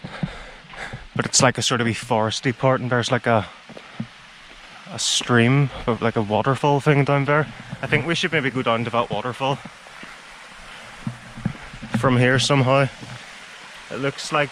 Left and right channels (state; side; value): identical; both; correlation 1.00